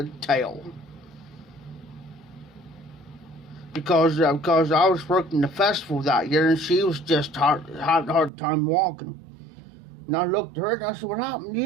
tale. Because I was working the festival that year, and she was just hard time walking. And I looked at her and I said, "What happened to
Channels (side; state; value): left; drops out; at 8.3 s